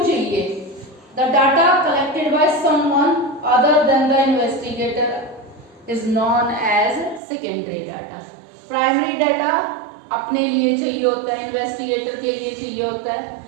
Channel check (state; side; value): drops out; left; at 7.2 s